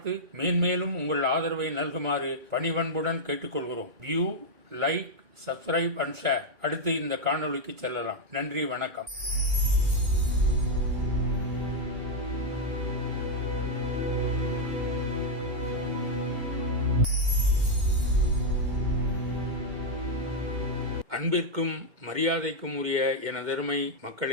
மேன்மேலும் உங்கள் ஆதரவை நல்குமாறு பணிவன்புடன் கேட்டுக்கொள்கிறோம். View, like, subscribe and share. அடுத்து இந்த காணொளிக்கு செல்லலாம். நன்றி, வணக்கம். அன்பிற்கும் மரியாதைக்கும் உரிய எனதருமை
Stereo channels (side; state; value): left; late; 2.3 ms